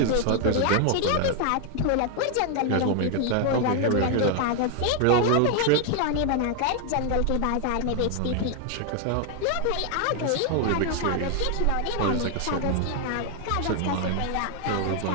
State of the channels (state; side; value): different; both; correlation 0.00